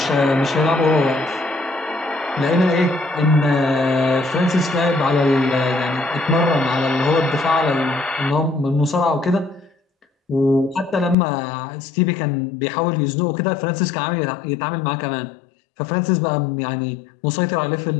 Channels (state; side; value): drops out; right; at 11.2 s